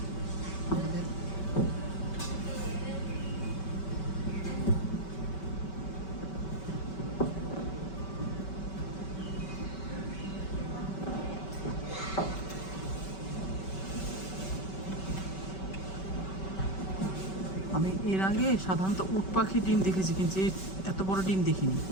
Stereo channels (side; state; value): right; late; 5.2 ms